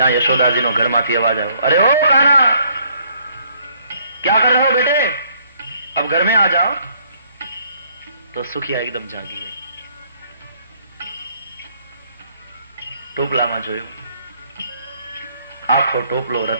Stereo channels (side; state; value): both; inverted; correlation -0.65